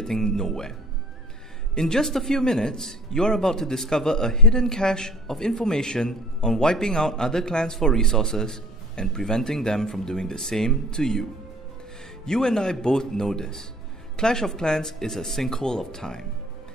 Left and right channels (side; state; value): both; normal; correlation 0.49